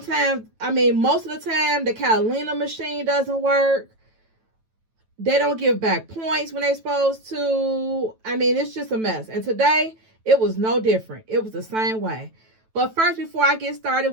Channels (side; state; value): left; late; 9.1 ms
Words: most of the time, the Catalina machine doesn't work. They don't give back points when they're supposed to. It's just a mess. And today, it was no different. It was the same way. But first, before I get started